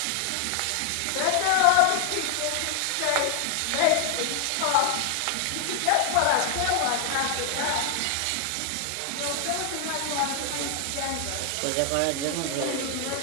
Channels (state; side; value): different; both; correlation 0.00